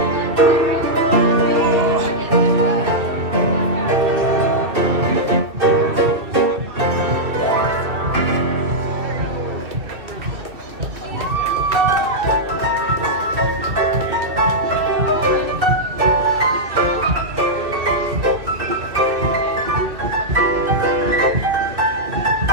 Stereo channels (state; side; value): late; left; 2.6 ms